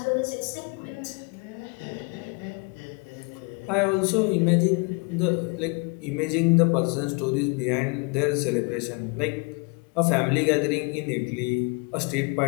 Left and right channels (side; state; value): right; quieter; 31.8 dB